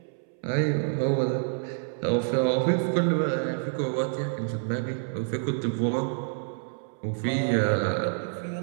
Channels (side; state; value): left; silent; 60 dB below the other